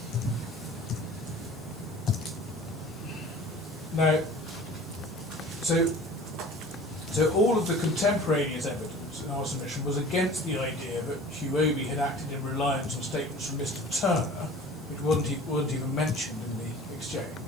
Now, so all of the contemporaneous evidence evidence in our submission was against the idea that Huobi had acted in reliance on statements from Mr. Turner, which wasn't even mentioned in the exchange,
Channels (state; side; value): noise; left; hiss, 26 dB below the sound